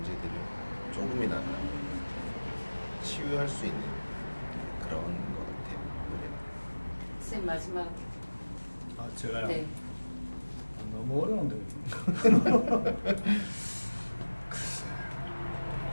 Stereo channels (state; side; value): inverted; both; correlation -1.00